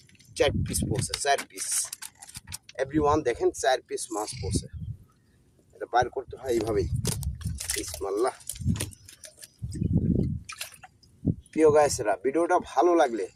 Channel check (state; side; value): identical; both; correlation 1.00